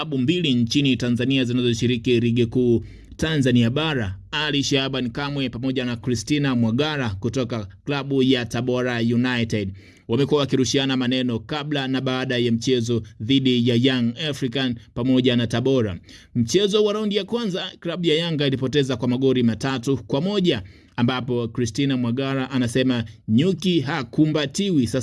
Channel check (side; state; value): both; identical; correlation 1.00